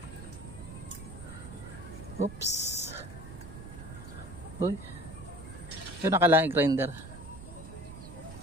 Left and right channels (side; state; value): right; noise; rumble, 13 dB below the sound